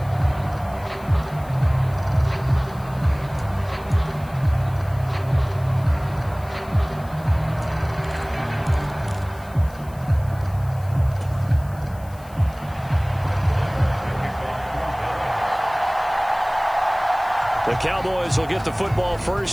The Cowboys will get the football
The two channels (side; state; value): left; noise; hiss, 24 dB below the sound